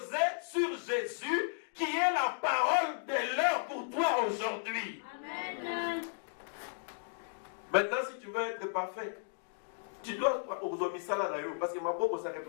sur Jésus qui est la parole de l'heure pour toi aujourd'hui. Amen. Maintenant, si tu veux être parfait, tu dois aux misala nayo, parce que ma bobo ça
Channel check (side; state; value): right; silent; digital silence